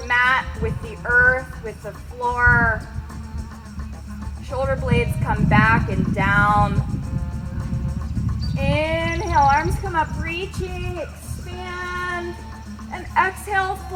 mat, with the earth, with the floor. Shoulder blades come back and down. Inhale, arms come up, reaching, expand. And exhale,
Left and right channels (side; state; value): both; identical; correlation 1.00